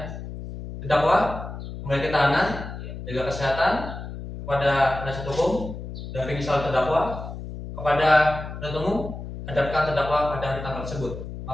Terdakwa kembali ke tahanan, jaga kesehatan kepada penasihat hukum dan misal terdakwa kepada penuntut umum, hadapkan terdakwa pada hari tanggal tersebut.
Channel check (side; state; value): left; noise; hum, 9 dB below the sound